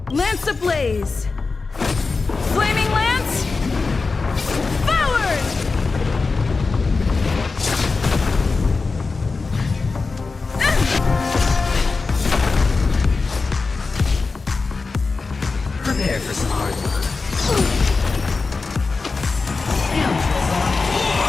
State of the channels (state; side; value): quieter; right; 4.2 dB